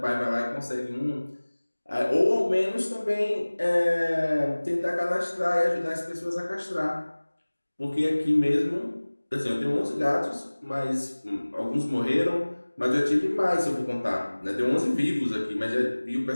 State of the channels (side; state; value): both; inverted; correlation -1.00